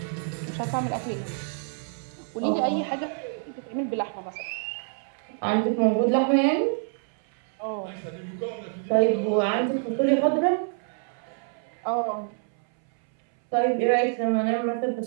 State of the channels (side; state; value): left; silent; 60 dB below the other